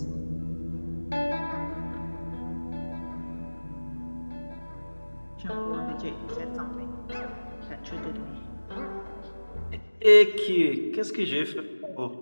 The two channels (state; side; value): inverted; both; correlation -1.00